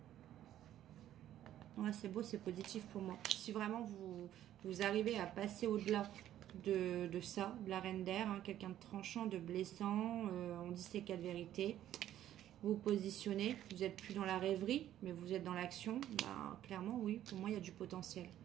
Ouais, c'est beau, c'est positif pour moi. Si vraiment vous arrivez à passer au-delà de ça, de la reine d'air, hein, quelqu'un de tranchant, de blessant, on dit c'est 4 vérités, vous positionnez, vous n'êtes plus dans la rêverie, mais vous êtes dans l'action, bah, clairement, oui, pour moi, il y a du potentiel.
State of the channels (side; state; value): left; quieter; 12.1 dB